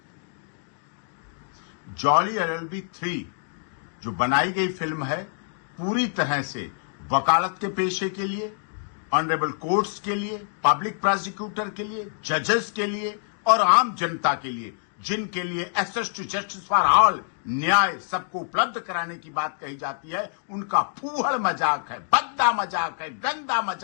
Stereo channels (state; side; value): silent; right; digital silence